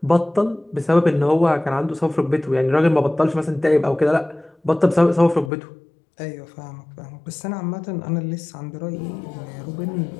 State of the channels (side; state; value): right; drops out; at 5.5 s